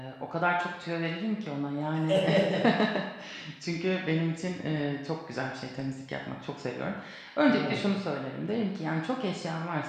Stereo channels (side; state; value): both; identical; correlation 1.00